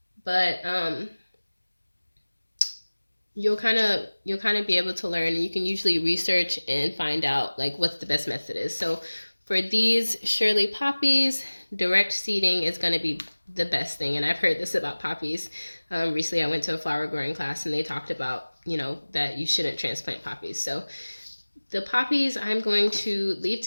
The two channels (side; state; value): both; inverted; correlation -1.00